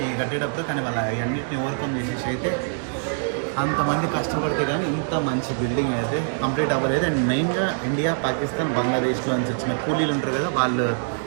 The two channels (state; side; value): silent; left; digital silence